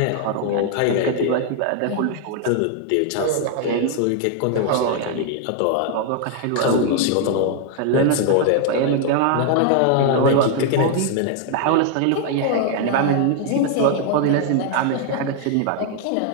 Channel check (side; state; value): both; different; correlation 0.00